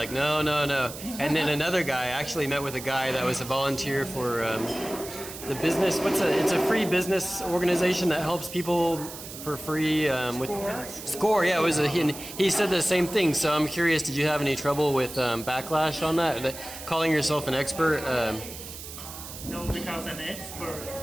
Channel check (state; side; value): noise; right; hiss, 12 dB below the sound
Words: no. And then another guy, I actually met with a guy that was a volunteer for the business. It's a free business organization that helps people for free with Score. Yeah, he said the same thing. So I'm curious, did you have any trouble with backlash on that? Calling yourself an expert? No, because an expert